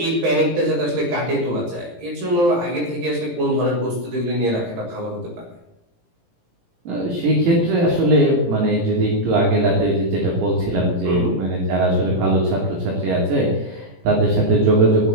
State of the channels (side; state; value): left; late; 17 ms